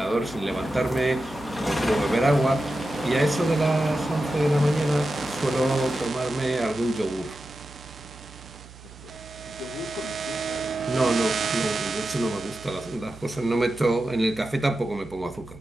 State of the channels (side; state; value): right; noise; hum, 19 dB below the sound